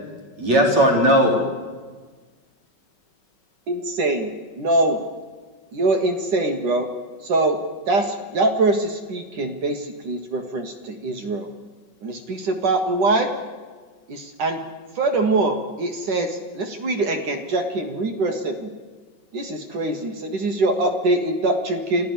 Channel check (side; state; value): left; late; 5.3 ms